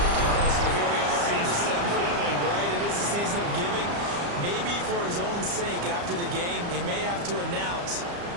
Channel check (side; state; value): left; late; 34 ms